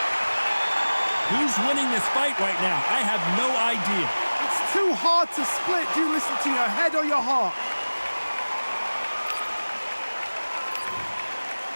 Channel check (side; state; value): both; inverted; correlation -1.00